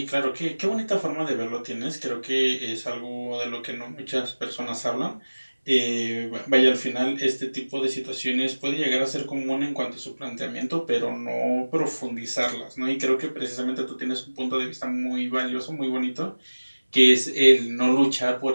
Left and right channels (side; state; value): both; inverted; correlation -1.00